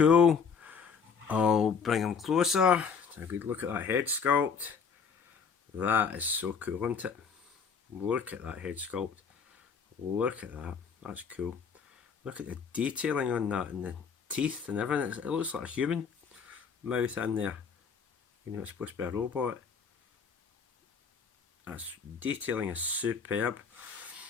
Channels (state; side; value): quieter; right; 6.0 dB